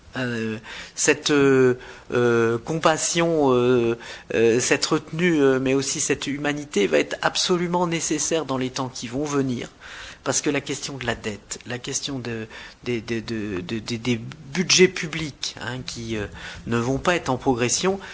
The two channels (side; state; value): both; identical; correlation 1.00